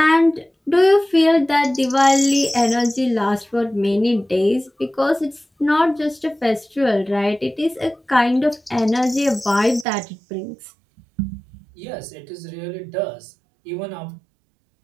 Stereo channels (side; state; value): left; drops out; at 9.9 s